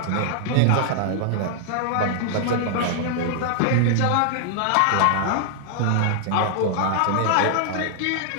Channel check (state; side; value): different; both; correlation -0.01